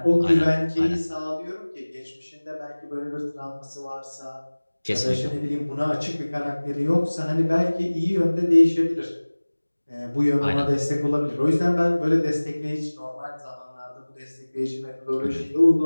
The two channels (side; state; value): both; inverted; correlation -1.00